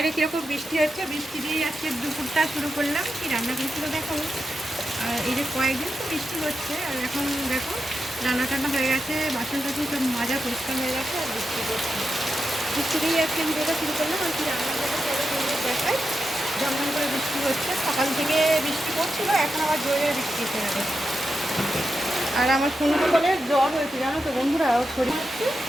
কীরকম বৃষ্টি হচ্ছে, বৃষ্টি দিয়েই আজকে দুপুরটা শুরু করলাম। কি রান্না করেছিল দেখাবো। আর এই যে কয়েকদিন তো বৃষ্টি হচ্ছে, আর এখন দেখো রান্না টান্না হয়ে গেছে, বাসন টাসন সব মাজা পরিষ্কার হয়ে গেছে, আর বৃষ্টি করছে। বৃষ্টি দিয়েই আজকে ভিডিওটা শুরু করলাম। আর কি রান্না করতে দেখাই, ঝমঝম করে বৃষ্টি হচ্ছে, সকাল থেকে বৃষ্টি পড়ছিল, এখন আবার জোরে বৃষ্টি এসে গেছে। আর আমার সোনু বলে জ্বর হয়েছে, জানো তো বন্ধুরা, ওর শরীর হচ্ছে,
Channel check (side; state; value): both; normal; correlation 0.88